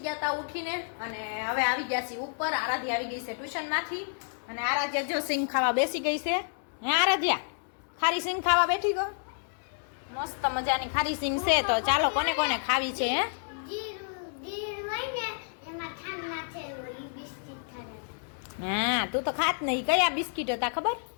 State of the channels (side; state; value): right; silent; digital silence